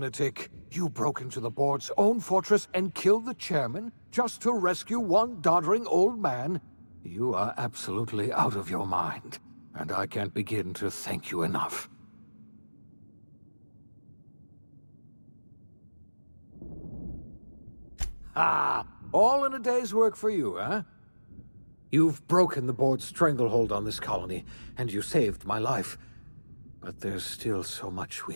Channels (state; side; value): inverted; both; correlation -1.00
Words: You broke into the board's own fortress and killed the chairman just to rescue one doddering old man? You are absolutely out of your mind, and I can't begin to thank you enough. Ah, all in a day's work for you, huh? You've broken the board's stranglehold on this colony, and you saved my life. But there's still so much we